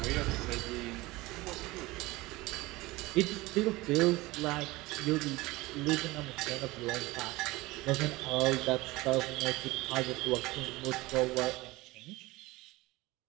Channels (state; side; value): quieter; left; 20.6 dB